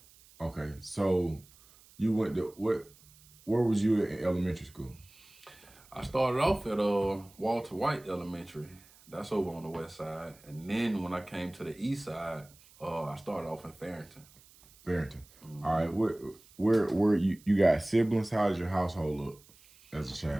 Okay, so you went to where was you in elementary school? I started off at Walter White Elementary. That's over on the west side. And then when I came to the east side, I started off in Farrington. Mm-hmm. All right, where you got siblings? How does your household look as a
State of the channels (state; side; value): noise; right; hiss, 26 dB below the sound